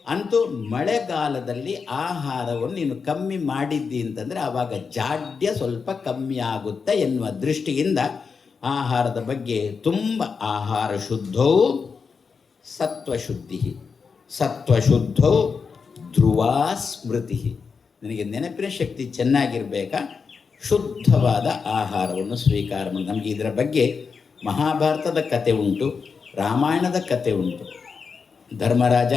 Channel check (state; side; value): quieter; right; 5.4 dB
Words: ಅಂತೂ ಮಳೆಗಾಲದಲ್ಲಿ ಆಹಾರವನ್ನು ನೀನು ಕಮ್ಮಿ ಮಾಡಿದ್ದಿ ಅಂತಂದರೆ ಆವಾಗ ಜಾಡ್ಯ ಸ್ವಲ್ಪ ಕಮ್ಮಿ ಆಗುತ್ತೆ ಎನ್ನುವ ದೃಷ್ಟಿಯಿಂದ ಆಹಾರದ ಬಗ್ಗೆ ತುಂಬ ಆಹಾರ ಶುದ್ಧವು ಸತ್ವಶುದ್ಧವು ಧ್ರುವಾ ಸ್ಮೃತಿ. ನನಗೆ ನೆನಪಿನ ಶಕ್ತಿ ಚೆನ್ನಾಗಿರಬೇಕಾ, ಶುದ್ಧವಾದ ಆಹಾರವನ್ನು ಸ್ವೀಕಾರ ಮಾಡಿ. ನಮಗೆ ಇದರ ಬಗ್ಗೆ ಮಹಾಭಾರತದ ಕತೆ ಉಂಟು, ರಾಮಾಯಣದ ಕತೆ ಉಂಟು. ಧರ್ಮರಾಜ